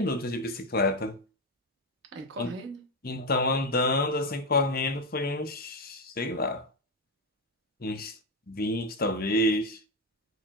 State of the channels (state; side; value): normal; both; correlation 0.10